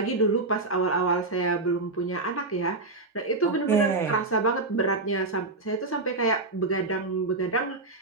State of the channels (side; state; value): left; quieter; 3.3 dB